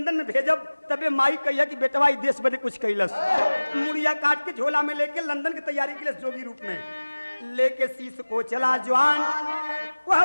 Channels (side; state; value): both; inverted; correlation -1.00